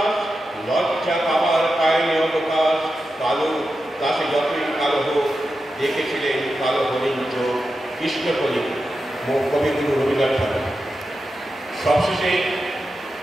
লজ্জা পাবার পায়নি অবকাশ। কালো তা সে যতই কালো হোক, দেখেছিলেন কালো হরিণ চোখ। কৃষ্ণকবি কবিগুরু রবীন্দ্রনাথ ঠাকুর। সবশেষে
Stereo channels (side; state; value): both; normal; correlation 0.90